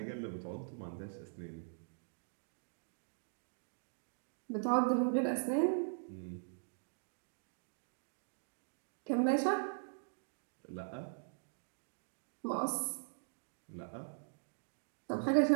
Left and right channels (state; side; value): silent; left; digital silence